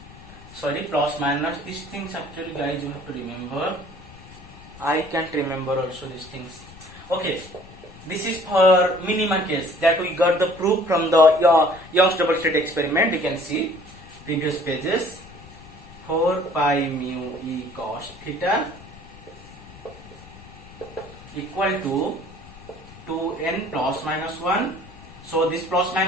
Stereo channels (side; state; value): left; noise; rumble, 19 dB below the sound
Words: sorry, plus minus. These things actually guys you have to remember. I can't remember also these things. Okay, this is for minima case that we got the proof from the Young's double slit experiment. You can see previous pages. 4 pi mu e cos theta equal to 2n plus minus 1. So this plus